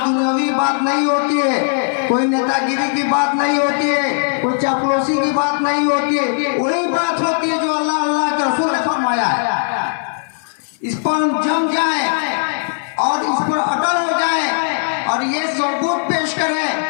बात नहीं होती है, कोई नेतागिरी की बात नहीं होती है, कोई चापलूसी की बात नहीं होती है। वही बात होती है जो अल्लाह अल्लाह के रसूल ने फरमाया है। इस पर हम जम जाएं और इस पर अटल हो जाएं और ये सबूत पेश करें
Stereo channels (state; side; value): silent; right; 59 dB below the other